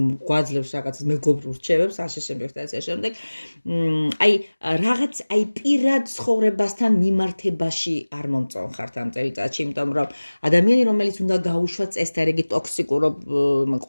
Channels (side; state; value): both; inverted; correlation -1.00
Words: რაღაცას მეგობრულ რჩევებს, ასე შემდეგ და ასე შემდეგ. აი პირად ცხოვრებასთან მიმართებაში არ მომწონხართ ამ წელიწადში, იმიტომ რომ ადამიანი, რომელიც უნდა გაუშვათ წესდარიგი ტოქსიკურ